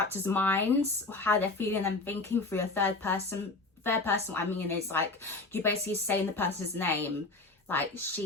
minds, how they're feeling and thinking through a third person. What I mean is, like, you basically saying the person's name, like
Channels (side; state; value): right; quieter; 3.4 dB